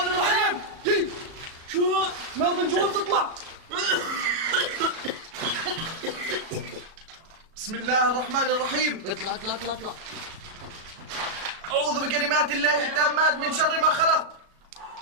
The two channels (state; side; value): late; left; 37 ms